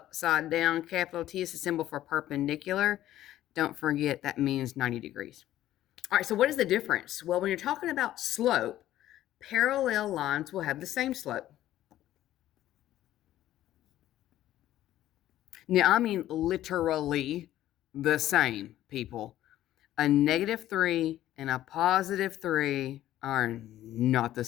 down capital T is a symbol for perpendicular. Don't forget that means 90 degrees. All right, so what is the difference? Well, when you're talking about slope, parallel lines will have the same slope. Now, I mean literally the same, people. A -3 and a +3 are not the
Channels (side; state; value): right; quieter; 13.5 dB